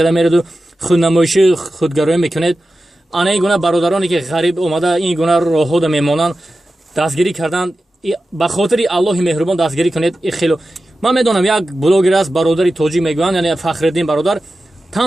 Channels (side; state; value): both; normal; correlation 0.93